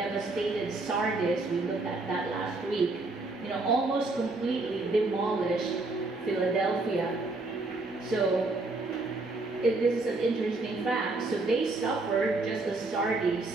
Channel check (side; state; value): left; quieter; 3.2 dB